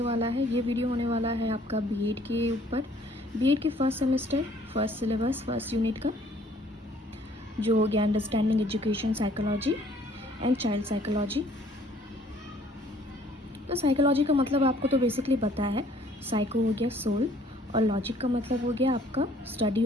वाला है ये वीडियो होने वाला है आपका बीएड के ऊपर। बीएड के first semester first syllabus first unit का जो हो गया understanding education psychology and child psychology. तो साइकोलॉजी का मतलब आपको तो बेसिकली पता है। साइको हो गया सोल और लॉजिक का मतलब हो गया आपका स्टडी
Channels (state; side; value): normal; both; correlation 0.59